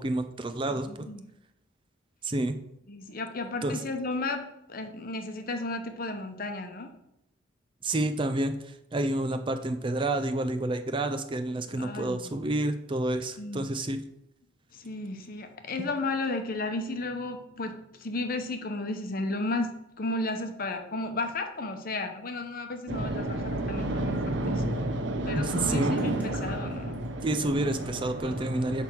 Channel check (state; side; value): normal; both; correlation 0.50